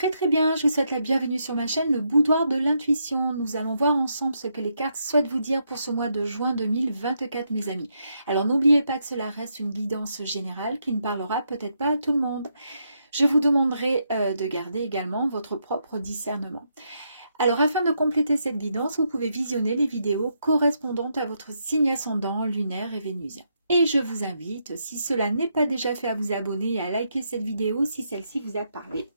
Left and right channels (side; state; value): both; inverted; correlation -0.79